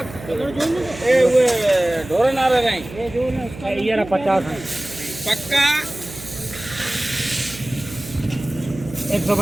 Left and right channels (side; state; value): right; noise; hum, 15 dB below the sound